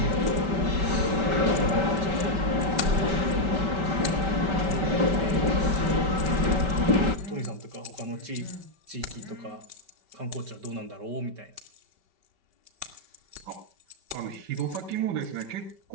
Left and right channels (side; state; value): left; late; 5.2 ms